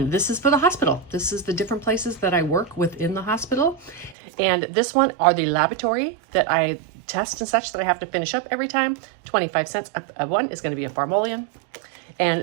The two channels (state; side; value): drops out; left; at 4.2 s